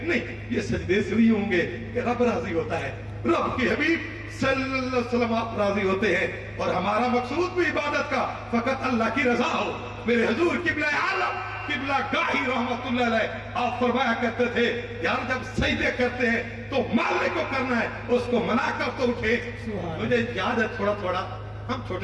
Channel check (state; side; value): identical; both; correlation 1.00